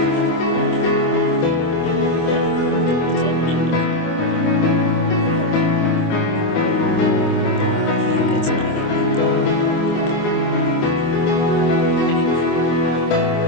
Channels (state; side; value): late; right; 25 ms